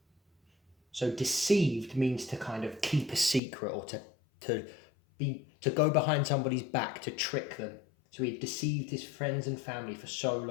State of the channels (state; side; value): drops out; right; at 3.4 s